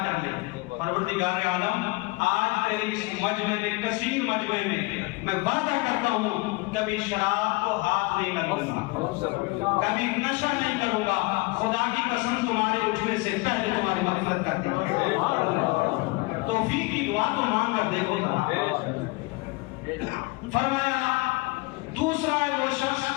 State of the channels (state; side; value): quieter; right; 24.9 dB